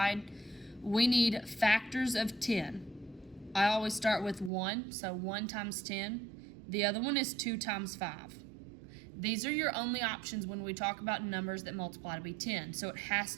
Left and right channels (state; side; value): drops out; left; at 4.5 s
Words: We need factors of 10. I always start with 1, so 1 times 10. The other one is 2 times 5. These are your only options when we talk about numbers that multiply to be 10, so it has